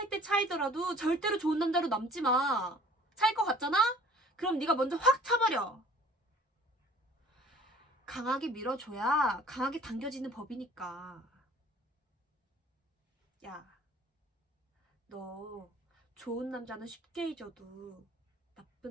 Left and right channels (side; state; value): both; normal; correlation 0.51